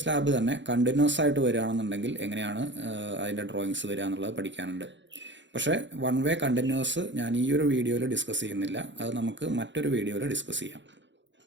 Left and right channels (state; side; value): late; left; 0.53 ms